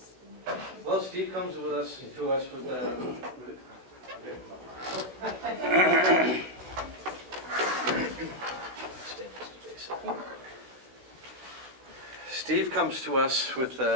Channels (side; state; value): left; late; 16 ms